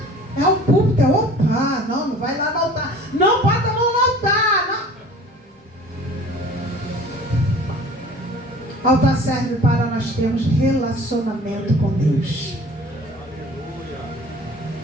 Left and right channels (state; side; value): normal; both; correlation 0.46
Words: É o púlpito, opa, não vai lá no altar. Não bota a mão no altar, não. Altar serve para nós termos relacionamento com Deus.